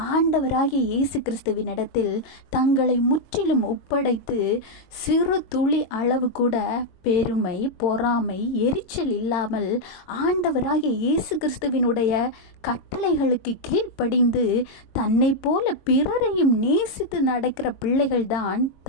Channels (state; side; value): late; right; 22 ms